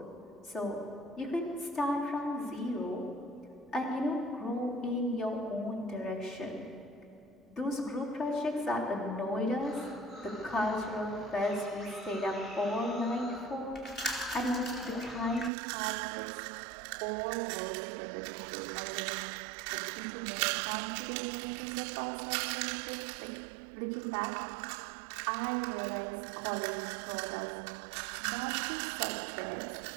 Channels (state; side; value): drops out; left; at 15.5 s